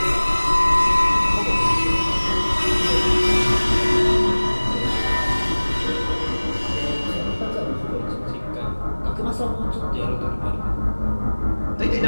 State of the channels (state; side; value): inverted; both; correlation -1.00